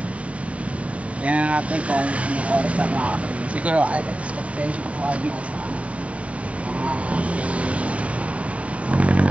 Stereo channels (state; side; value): late; left; 0.065 ms